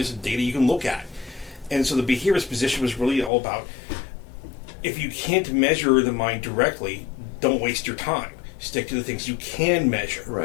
and data you can look at. And so the behaviorist position was really all about, if you can't measure the mind directly, don't waste your time. Stick to the things you can measure.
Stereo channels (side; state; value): right; drops out; at 3.3 s